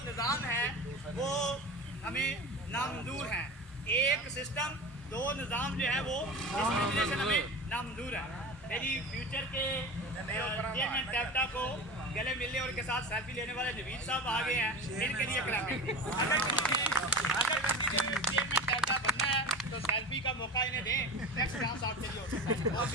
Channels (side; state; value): both; normal; correlation 0.31